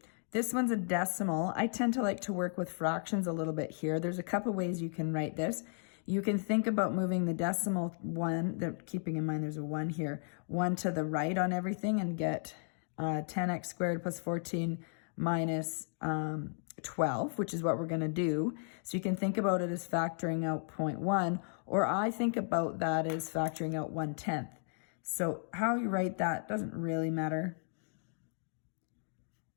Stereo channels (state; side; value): silent; right; 55 dB below the other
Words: this one's a decimal. I tend to like to work with fractions a little bit here. There's a couple ways you can write this. You can think about moving the decimal 1, keeping in mind there's a 1 here, 1 to the right on everything and get 10x squared plus 14 minus 12, which is what we're going to do. So you can think about it as factoring out 0.1, or I think about that as factoring out 1/10. So how you write that doesn't really matter.